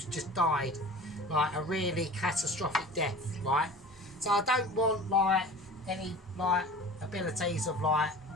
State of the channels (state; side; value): normal; both; correlation 0.39